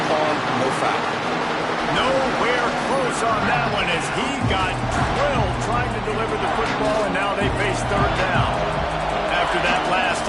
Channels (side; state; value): both; identical; correlation 1.00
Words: harm, no foul. Nowhere close on that one as he got drilled trying to deliver the football, and now they face third down. After that last